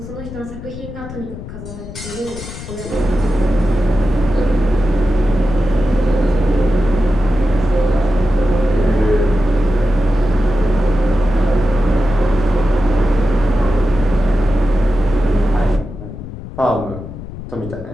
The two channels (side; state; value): left; noise; rumble, 12 dB below the sound